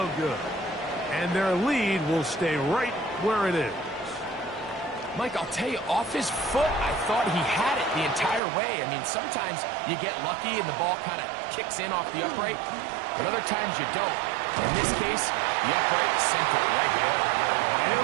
good. And their lead will stay right where it is. Mike, I'll tell you, off his foot, I thought he had it the entire way. I mean, sometimes you get lucky and the ball kind of kicks in off the upright, but other times you don't. In this case, the upright sent it right there. And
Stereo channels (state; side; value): drops out; left; at 8.4 s